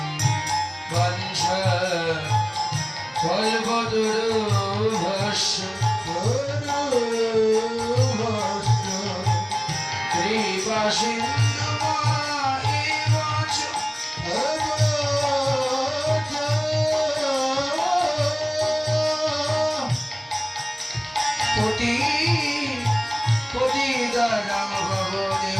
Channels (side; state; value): both; identical; correlation 1.00